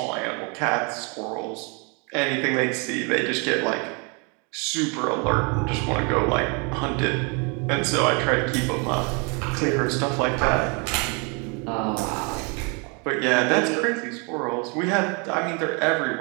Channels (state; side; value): quieter; left; 33.3 dB